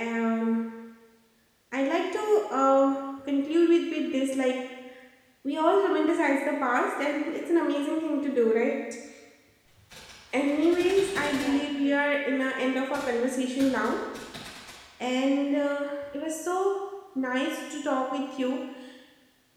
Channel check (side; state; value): both; identical; correlation 1.00